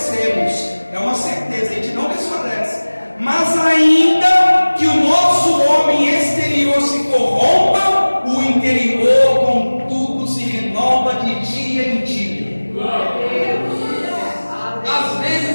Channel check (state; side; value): inverted; both; correlation -1.00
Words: É uma certeza, a gente não desfalece. Mas ainda que o nosso homem exterior se corrompa, o interior contudo se renova de dia em dia. Às vezes